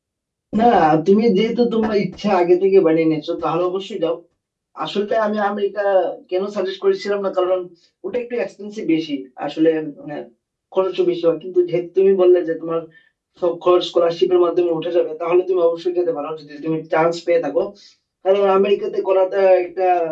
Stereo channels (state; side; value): identical; both; correlation 1.00